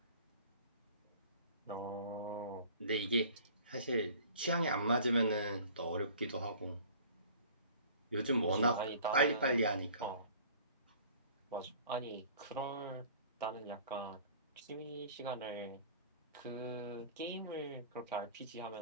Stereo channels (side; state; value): both; inverted; correlation -0.48